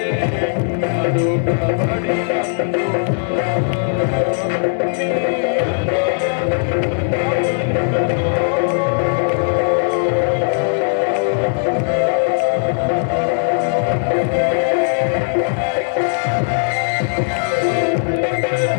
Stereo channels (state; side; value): silent; right; 65 dB below the other